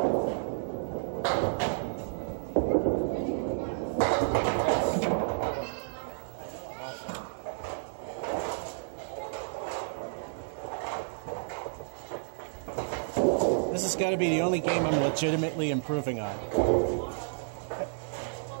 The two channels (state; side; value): silent; left; digital silence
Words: This has got to be the only game I'm legitimately improving on.